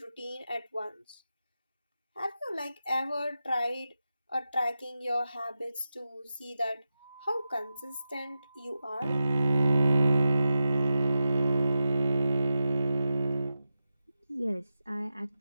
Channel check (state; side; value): inverted; both; correlation -0.91